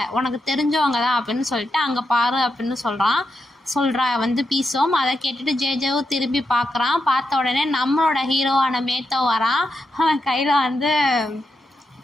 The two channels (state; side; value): normal; both; correlation 0.85